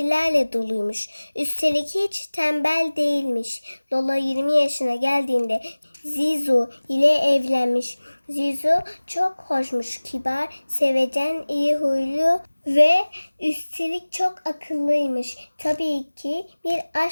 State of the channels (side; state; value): both; inverted; correlation -1.00